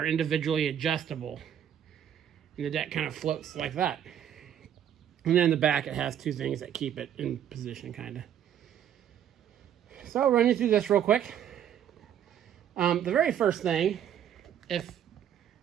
individually adjustable. And the deck kind of floats like that. And then in the back it has two things that keep it in position kind of. So I'll run you through this real quick. The very first thing, if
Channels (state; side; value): quieter; left; 9.8 dB